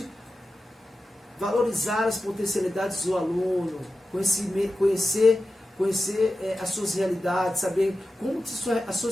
valorizar as potencialidades do aluno, conhecer as suas realidades, saber como as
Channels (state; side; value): normal; both; correlation 0.92